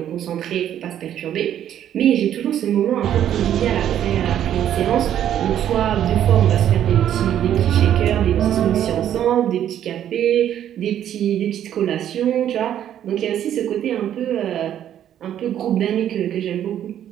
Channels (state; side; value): quieter; left; 10.6 dB